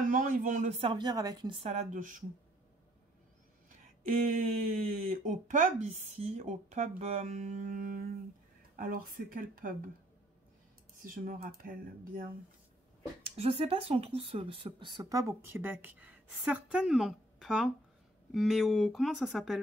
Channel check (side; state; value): both; normal; correlation 0.63